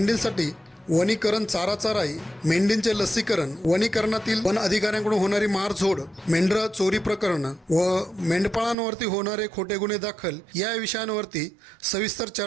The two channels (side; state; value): left; drops out; at 8.8 s